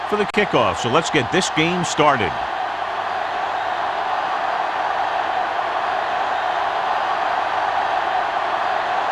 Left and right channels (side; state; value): both; identical; correlation 1.00